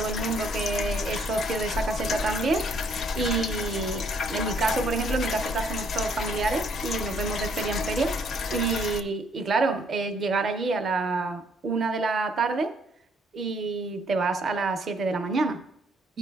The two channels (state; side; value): normal; both; correlation 0.66